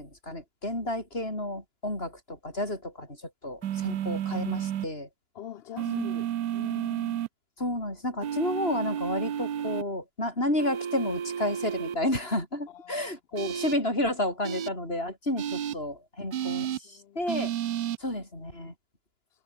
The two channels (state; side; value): late; right; 2.8 ms